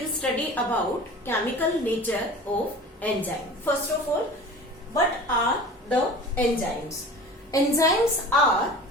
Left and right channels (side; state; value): both; normal; correlation 0.39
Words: study about chemical nature of enzyme. First of all, what are the enzymes? Enzymes are